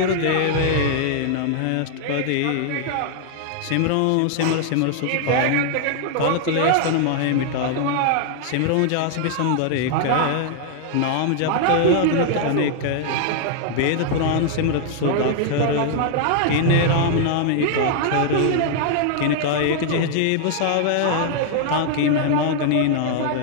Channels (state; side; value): different; both; correlation 0.00